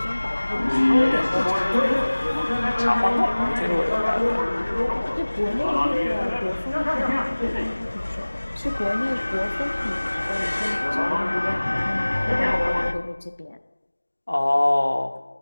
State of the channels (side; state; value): both; inverted; correlation -1.00